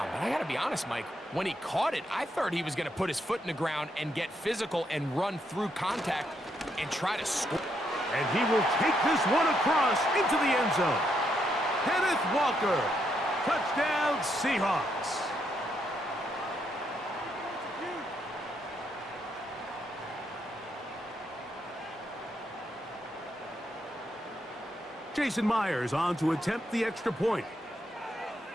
But I got to be honest, Mike, when he caught it, I thought he was going to put his foot in the ground and get physical and run through contact and try to score. And he will take this one across into the end zone. Kenneth Walker, touchdown Seahawks. Jason Myers on to attempt the extra point.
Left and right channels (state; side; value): normal; both; correlation 0.77